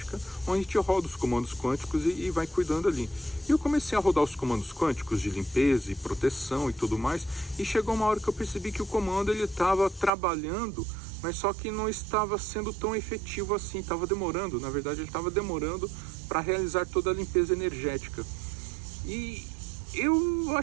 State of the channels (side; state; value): left; drops out; at 10.1 s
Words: onde a gente roda os comandos quânticos e vai cuidando ali. E eu comecei a rodar os comandos quânticos de limpeza e proteção e tudo mais, e chegou uma hora que eu percebi que o comando ele estava trabalhando, mas só que não estava sendo tão efetivo assim, estava demorando, na verdade ele estava demorando para realizar toda a limpeza energética. E eu